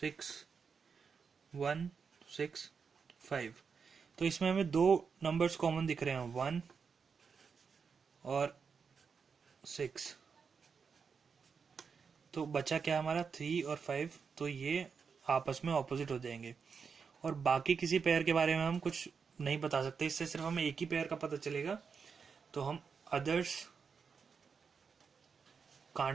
1, 6, 5, तो इसमें हमें 2 नंबर्स कॉमन दिख रहे हैं, 1 और 6। तो बचा क्या हमारा 3 और 5, तो ये आपस में ऑपोजिट हो जाएंगे। और बाकी किसी पेयर के बारे में हम कुछ नहीं बता सकते, इससे सिर्फ हमें एक ही पेयर का पता चलेगा। तो हम others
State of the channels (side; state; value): left; quieter; 5.8 dB